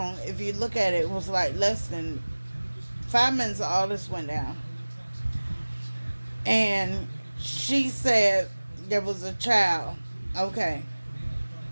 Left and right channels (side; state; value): both; inverted; correlation -1.00